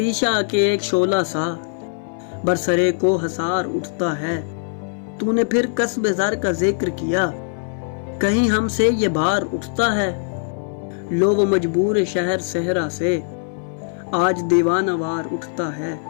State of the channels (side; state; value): right; silent; 61 dB below the other